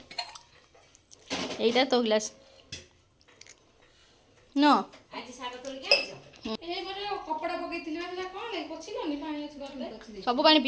এইটা তো গ্লাস ন କପଡ଼ା ପକେଇଥିଲି ହେଲା କ'ଣ ପୋଛିଲନି ପାଣି ଅଛି ଗଲେ ସବୁ ପାଣି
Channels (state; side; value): identical; both; correlation 1.00